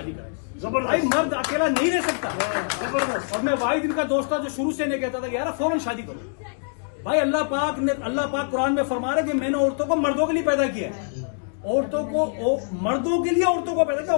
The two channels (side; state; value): right; silent; digital silence